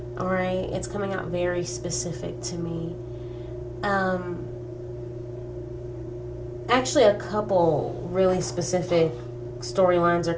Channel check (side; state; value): both; identical; correlation 1.00